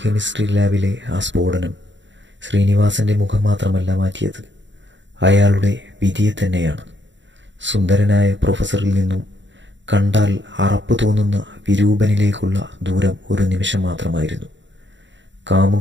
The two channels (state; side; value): late; left; 0.54 ms